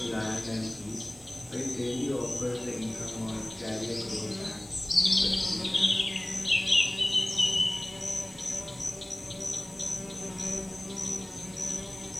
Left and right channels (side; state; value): right; noise; hiss, 23 dB below the sound